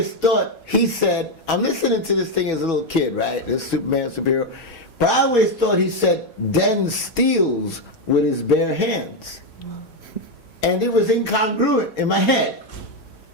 thought he said, I'm listening to this thing as a little kid, right? This Superman superhero, but I always thought he said Den steals with his bare hands, and it was incongruent in my head.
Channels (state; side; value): late; right; 4.2 ms